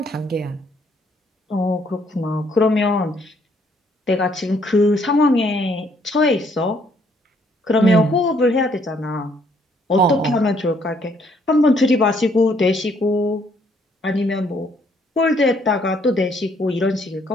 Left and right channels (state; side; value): normal; both; correlation 0.67